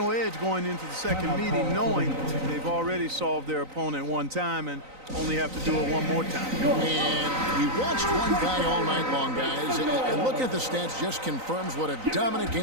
edge going into the second meeting, knowing they've already solved their opponent one time and only have to do it one more time. And we watched one guy all night long, guys, and looking at the stats just confirms what a dominant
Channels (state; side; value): late; left; 3.9 ms